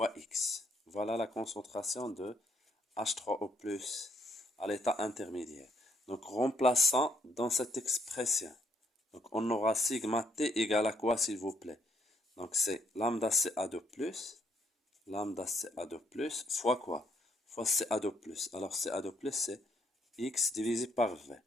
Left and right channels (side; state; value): both; normal; correlation 0.70